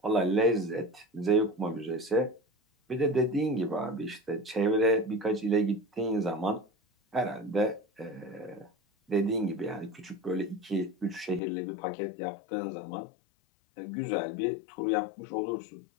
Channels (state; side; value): drops out; right; at 11.4 s